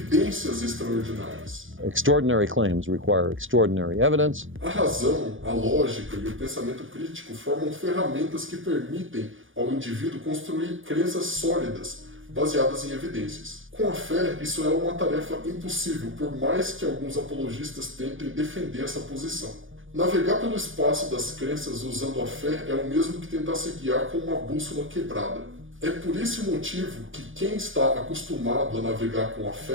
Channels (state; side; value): late; left; 0.58 ms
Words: extraordinárias. Extraordinary claims require extraordinary evidence. A razão, a lógica e o pensamento crítico formam ferramentas que permitem ao indivíduo construir crenças sólidas, baseadas em evidências. Com a fé, isso é uma tarefa impossível, por mais que alguns apologistas tentem defender essa posição. Navegar pelo espaço das crenças usando a fé é o mesmo que tentar se guiar com uma bússola quebrada. É por esse motivo que quem está acostumado a navegar com a